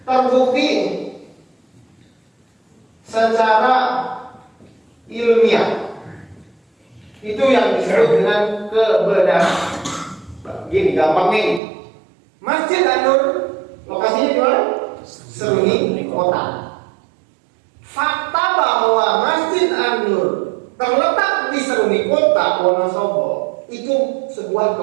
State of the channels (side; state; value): left; drops out; at 11.6 s